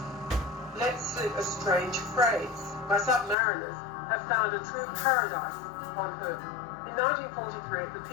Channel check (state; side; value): drops out; right; at 3.4 s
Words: let slip a strange phrase: "My submariners have found a true paradise on Earth." In 1943, at the